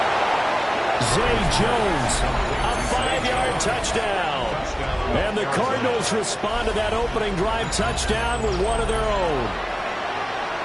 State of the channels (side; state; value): both; identical; correlation 1.00